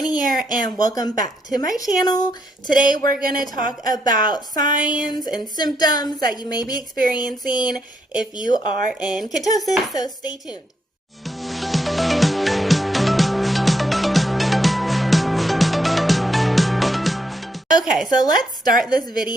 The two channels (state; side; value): normal; both; correlation 0.77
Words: here, and welcome back to my channel. Today we're going to talk about signs and symptoms that you may be experiencing if you are in ketosis, so stay tuned. Okay, so let's start this